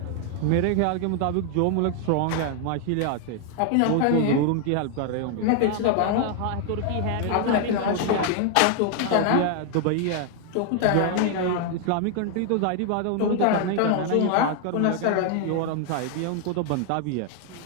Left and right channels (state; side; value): different; both; correlation 0.00